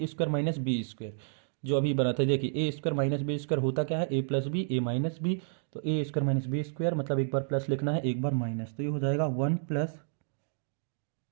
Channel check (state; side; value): silent; left; digital silence